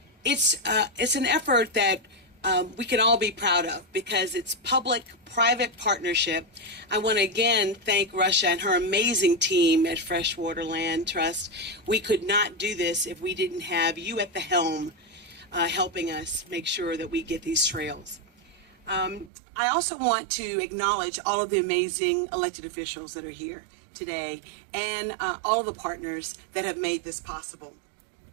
it's an effort that we can all be proud of because it's public-private partnership. I want to again thank Russia and her amazing team at Freshwater Land Trust. We could not do this if we didn't have you at the helm helping us make sure that we get these trails. I also want to acknowledge all of the amazing elected officials that are here today and all of the partners that have made this possible.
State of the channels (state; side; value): drops out; left; at 19.3 s